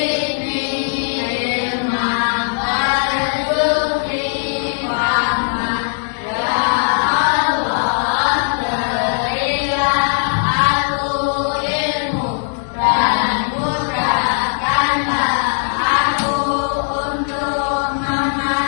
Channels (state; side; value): silent; right; 67 dB below the other